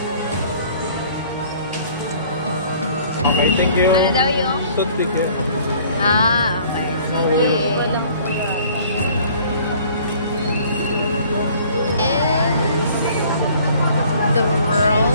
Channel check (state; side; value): inverted; both; correlation -0.54